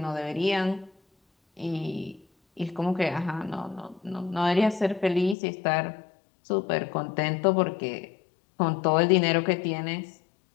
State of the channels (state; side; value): drops out; right; at 5.4 s